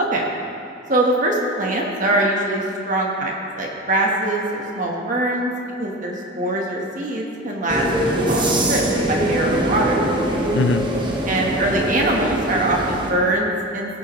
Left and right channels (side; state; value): both; normal; correlation 0.27